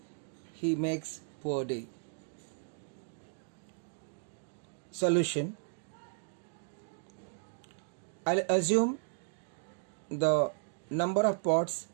he makes per day. Solution. I'll assume the number of pots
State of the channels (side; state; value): left; silent; digital silence